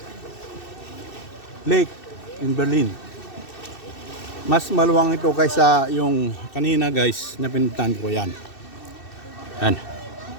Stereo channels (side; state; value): right; late; 2.6 ms